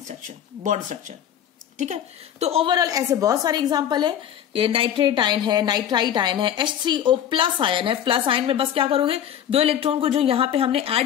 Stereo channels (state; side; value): quieter; right; 9.9 dB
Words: bond structure, ठीक है। तो ओवरऑल ऐसे बहुत सारे एग्जांपल है। ये नाइट्रेट आयन है, नाइट्राइट आयन है, H3O प्लस आयन है। प्लस आयन में बस क्या करोगे, 2 इलेक्ट्रॉन को जो यहां पे हमने